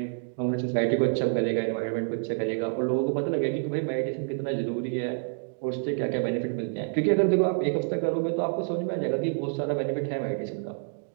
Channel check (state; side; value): silent; left; digital silence